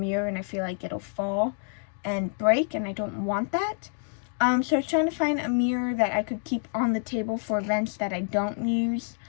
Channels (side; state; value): right; silent; 56 dB below the other